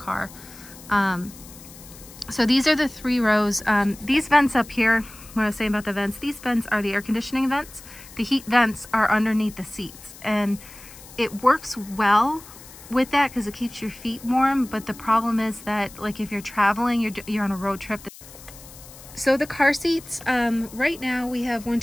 So these are the 3 rows. These vents up here, what I was saying about the vents, these vents are the air conditioning vents. The heat vents are underneath the seats, and it works well with that because it keeps your feet warm. But the problem is that, like, if you're traveling, you're on a road trip. So the car seats, right now we have 1,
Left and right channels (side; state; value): left; noise; hiss, 19 dB below the sound